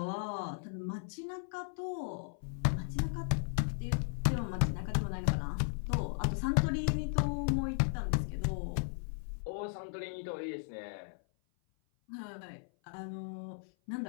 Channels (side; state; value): right; silent; 54 dB below the other